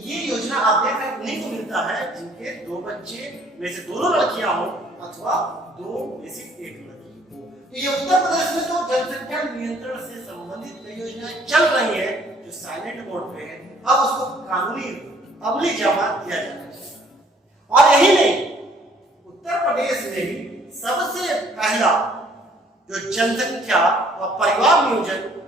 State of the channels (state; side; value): normal; both; correlation 0.60